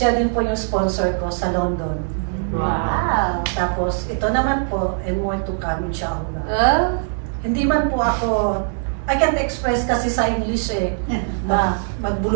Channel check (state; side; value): silent; left; 65 dB below the other